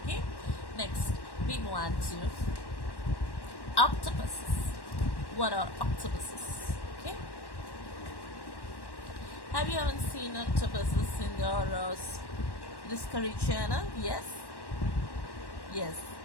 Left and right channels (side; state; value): right; late; 1.1 ms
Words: Okay. Next we move on to octopuses. What are octopuses? Okay. Have you ever seen octopuses in your Discovery Channel? Yes. Yes.